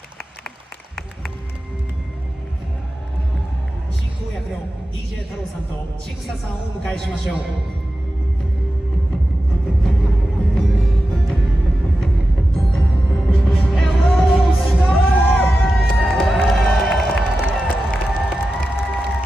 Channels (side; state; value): both; normal; correlation 0.92